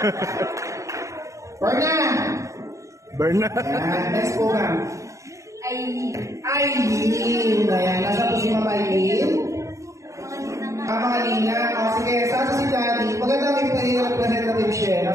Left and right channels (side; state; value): left; late; 0.15 ms